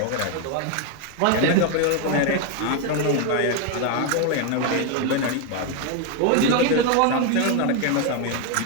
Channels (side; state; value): both; different; correlation 0.01